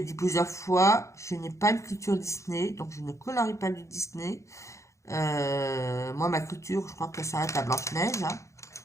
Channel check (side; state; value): right; late; 0.15 ms